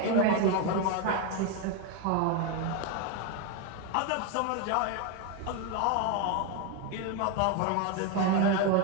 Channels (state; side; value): different; both; correlation 0.02